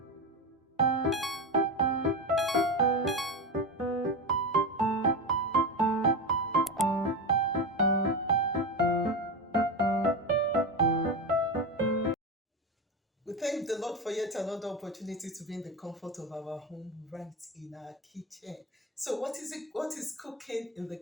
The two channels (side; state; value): both; normal; correlation 0.19